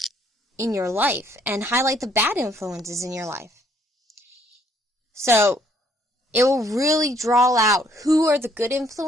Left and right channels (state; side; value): normal; both; correlation 0.66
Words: in your life and highlight the bad influences in your life. So, it will really draw out who are the good